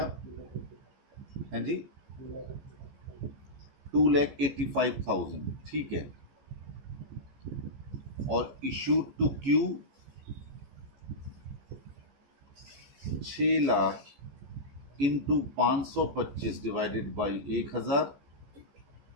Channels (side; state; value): left; late; 15 ms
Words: हैं जी, 2,85,000, ठीक है। और issued to Q 6 lakh into 525 divided by 1,000,